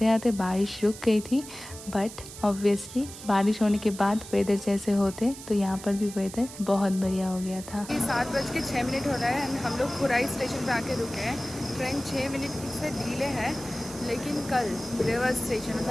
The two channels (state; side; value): noise; right; hiss, 14 dB below the sound